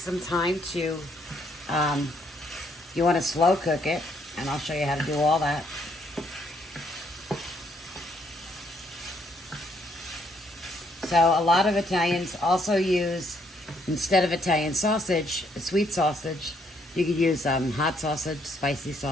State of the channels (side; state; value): both; normal; correlation 0.70